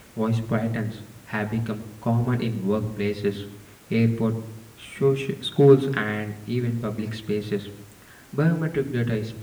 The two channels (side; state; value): both; identical; correlation 1.00